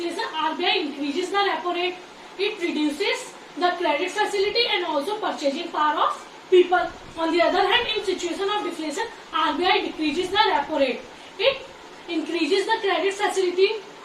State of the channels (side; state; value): both; identical; correlation 1.00